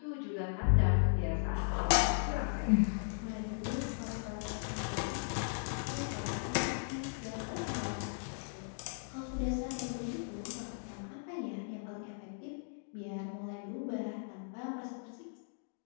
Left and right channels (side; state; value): right; silent; digital silence